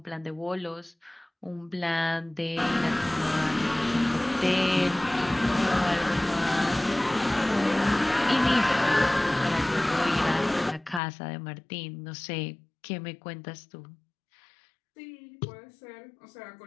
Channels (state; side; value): drops out; right; at 11.0 s